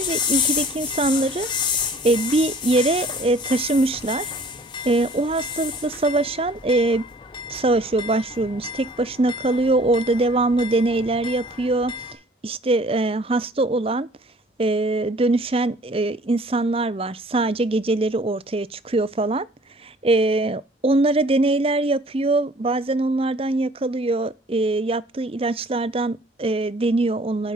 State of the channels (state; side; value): normal; both; correlation 0.53